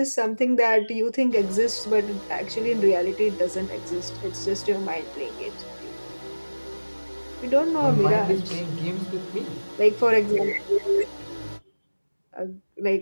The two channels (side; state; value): both; inverted; correlation -1.00